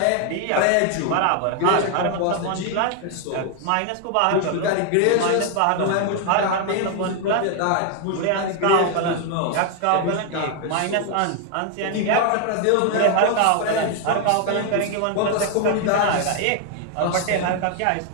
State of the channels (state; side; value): different; both; correlation 0.00